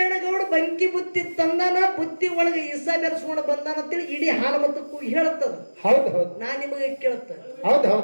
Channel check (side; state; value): both; inverted; correlation -1.00